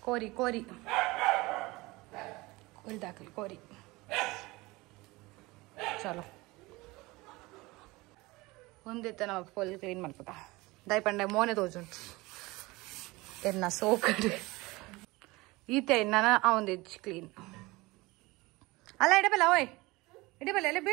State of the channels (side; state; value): left; quieter; 22.0 dB